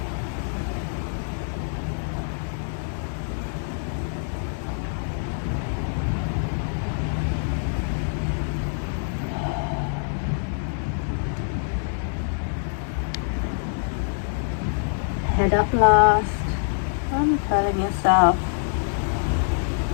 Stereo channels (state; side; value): silent; right; 62 dB below the other